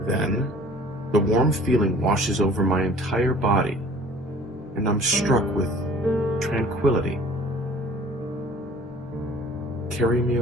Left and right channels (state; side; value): normal; both; correlation 0.49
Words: Then, the warm feeling washes over my entire body, and I'm struck with tranquility. Carry me